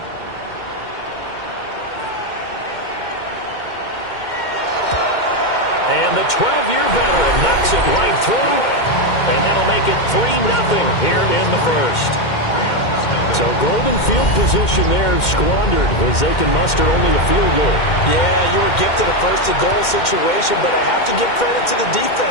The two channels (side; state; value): right; late; 2.1 ms